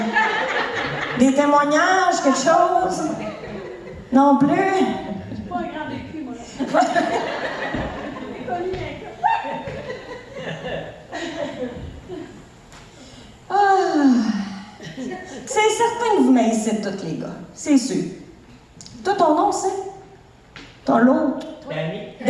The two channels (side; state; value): both; identical; correlation 1.00